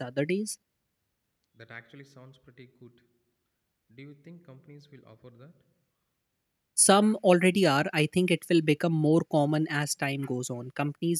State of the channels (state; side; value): identical; both; correlation 1.00